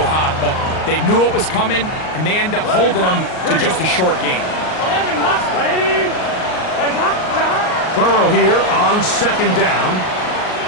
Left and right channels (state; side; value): late; right; 38 ms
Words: hot, but they knew it was coming, and they end up holding them to just a short gain. 11. 180. Burrow here on second down.